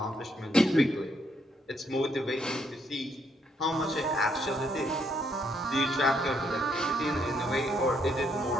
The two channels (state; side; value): normal; both; correlation 0.73